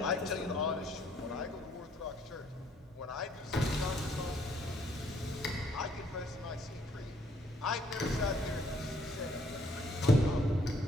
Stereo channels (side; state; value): both; normal; correlation 0.66